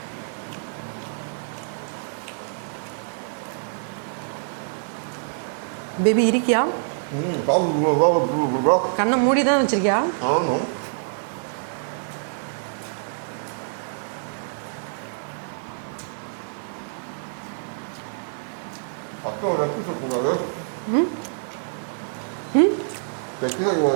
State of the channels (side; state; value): left; silent; 61 dB below the other